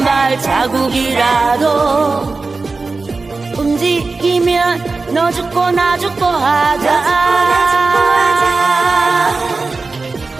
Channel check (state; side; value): quieter; left; 3.9 dB